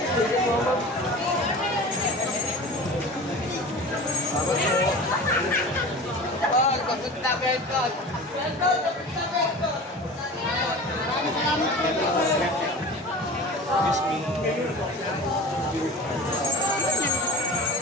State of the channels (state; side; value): normal; both; correlation 0.36